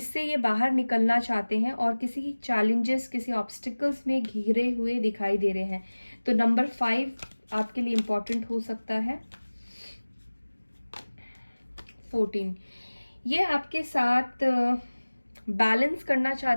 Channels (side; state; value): both; inverted; correlation -1.00